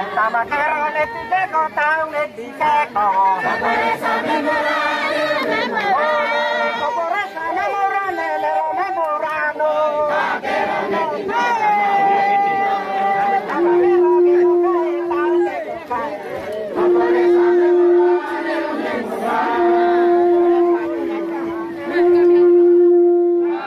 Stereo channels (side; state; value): both; identical; correlation 1.00